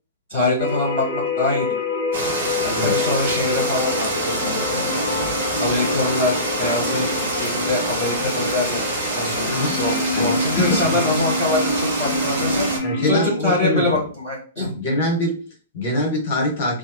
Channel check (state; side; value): inverted; both; correlation -0.30